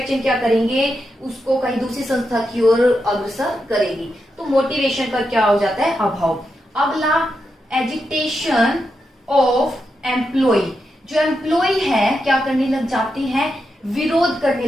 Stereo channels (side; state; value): both; normal; correlation 0.85